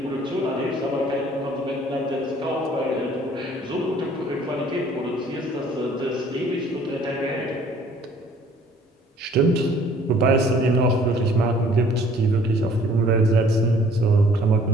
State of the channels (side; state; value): both; normal; correlation 0.56